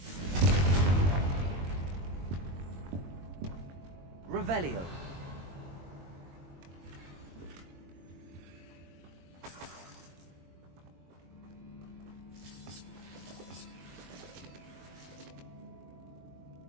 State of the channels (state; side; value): late; left; 22 ms